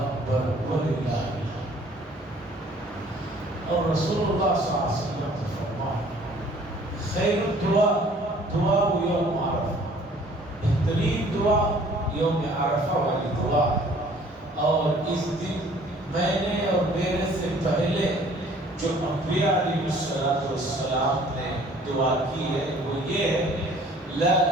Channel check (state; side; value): normal; both; correlation 0.54